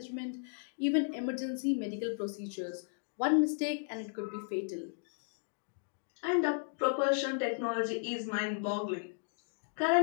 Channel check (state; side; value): silent; right; digital silence